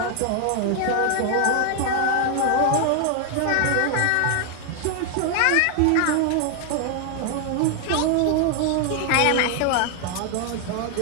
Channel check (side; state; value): both; different; correlation 0.00